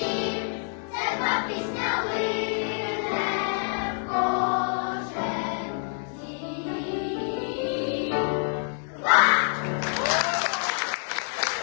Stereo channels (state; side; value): silent; right; 60 dB below the other